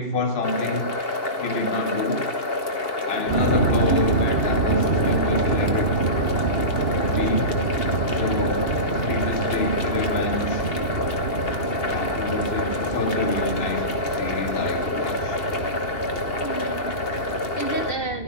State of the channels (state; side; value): late; right; 2.8 ms